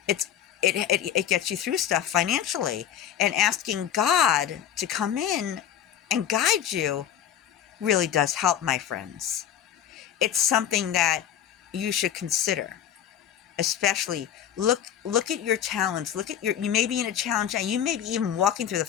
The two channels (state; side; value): quieter; right; 9.9 dB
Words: it gets you through stuff financially. And asking God to come in and guide you really does help, my friends. It's something that you should consider. Especially look at your talents. You may be in a challenge now. You may be even walking through the